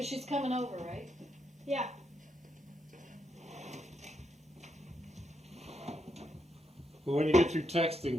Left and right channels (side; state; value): both; normal; correlation 0.80